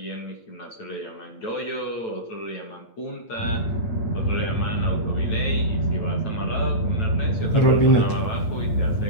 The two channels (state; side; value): late; right; 8.8 ms